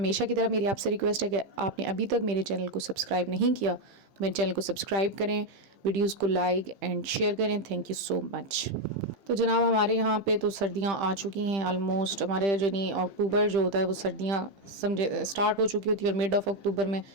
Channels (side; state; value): left; late; 15 ms